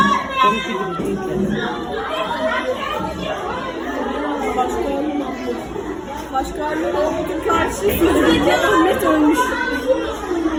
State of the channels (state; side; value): identical; both; correlation 1.00